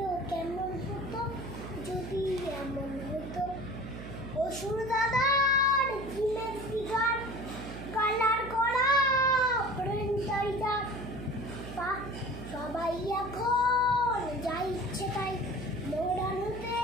কেমন হতো যদি এমন হতো? অসুর দাদার জিলের ফিগার, কালার করা প্রিন্টার, সবাই এখন যা ইচ্ছে তাই মডার্ন হতে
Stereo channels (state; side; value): noise; right; hum, 10 dB below the sound